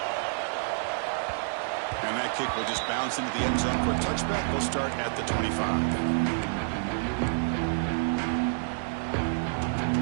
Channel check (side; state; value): left; silent; digital silence